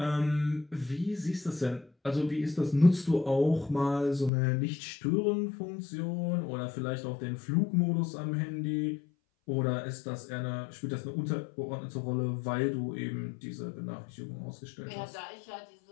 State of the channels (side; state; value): right; drops out; at 4.3 s